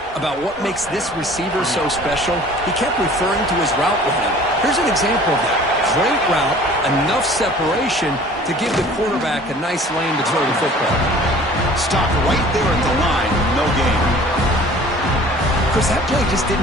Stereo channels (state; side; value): normal; both; correlation 0.48